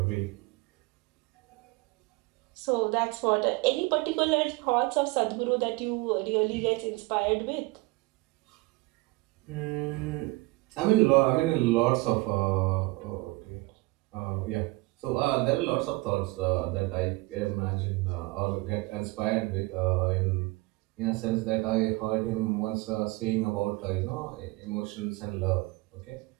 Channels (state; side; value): quieter; left; 23.1 dB